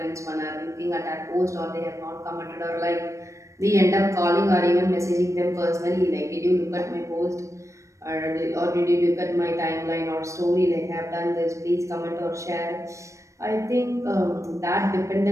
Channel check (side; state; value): left; late; 0.15 ms